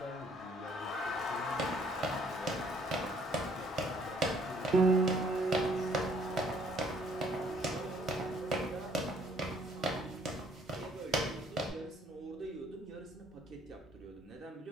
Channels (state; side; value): normal; both; correlation 0.63